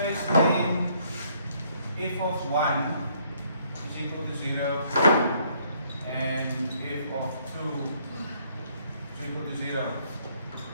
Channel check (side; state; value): both; inverted; correlation -0.66